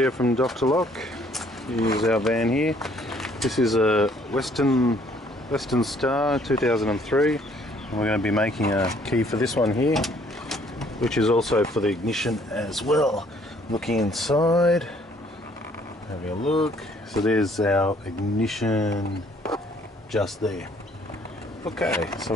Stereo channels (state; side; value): normal; both; correlation 0.62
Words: from Dr. Lock. Here's our van here. This is a Weston Star 2003, and we're going to be making a key for this one here, which is also for the ignition as well. Looking inside, having a look. So there's our ignition just there. Okay, so